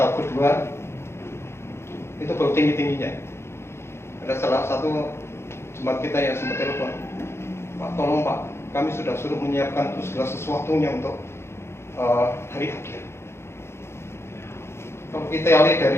kedua itu baru tinggi-tingginya. Ada salah satu jemaat kita yang sempat telepon, Pak, tolong Pak, kami sudah suruh menyiapkan segala sesuatunya untuk hari akhir. Kalau kita lihat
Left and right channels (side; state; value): right; late; 0.12 ms